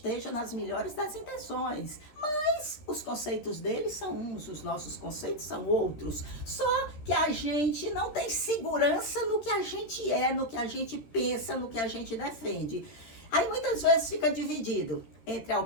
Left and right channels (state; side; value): late; right; 13 ms